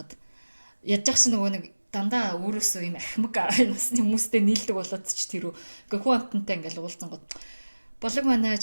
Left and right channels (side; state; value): both; inverted; correlation -1.00